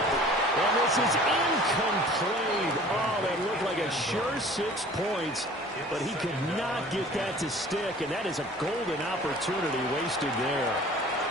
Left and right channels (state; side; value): normal; both; correlation 0.47